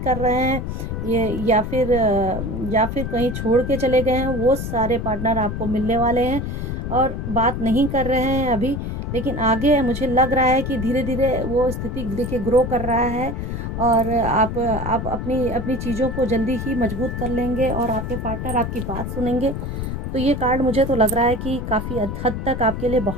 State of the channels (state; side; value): noise; left; rumble, 4 dB below the sound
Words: रहे हैं, ये या फिर कहीं छोड़ के चले गए हैं, वो सारे पार्टनर आपको मिलने वाले हैं और बात नहीं कर रहे हैं अभी। लेकिन आगे मुझे लग रहा है कि धीरे धीरे वो स्थिति देखिए ग्रो कर रहा है और आप अपनी अपनी चीज़ों को जल्दी ही मजबूत कर लेंगे और आपके पार्टनर आपकी बात सुनेंगे। तो ये कार्ड मुझे तो लग रहा है कि काफ़ी हद तक आपके लिए